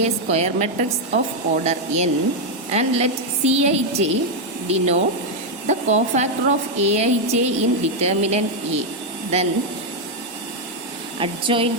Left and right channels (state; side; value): normal; both; correlation 0.01